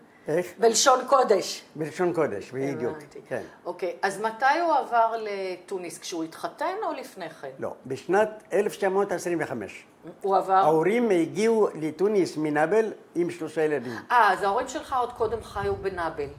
איך? בלשון קודש. בלשון קודש, בדיוק. כן. אוקיי, אז מתי הוא עבר לתוניס? כשהוא התחתן או לפני כן? לא, בשנת 1925. הוא עבר? ההורים הגיעו לתוניס מנאבל עם 3 ילדים. אז ההורים שלך עוד קודם חיו בנאבל.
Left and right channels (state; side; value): identical; both; correlation 1.00